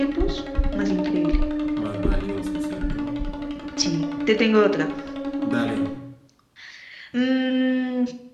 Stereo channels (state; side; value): identical; both; correlation 1.00